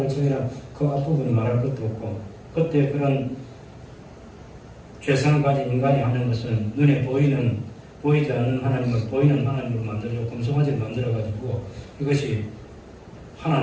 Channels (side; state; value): both; identical; correlation 1.00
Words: 정해라 그 앞부분은 말할 것도 없고 그때 그런 죄성을 가진 인간이 하는 것은 눈에 보이지 않는 하나님을 보이는 하나님으로 만들고 금송아지를 만들어가지고 이것이